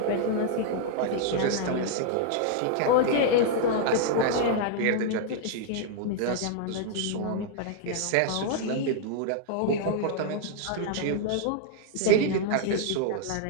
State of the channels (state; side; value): different; both; correlation -0.01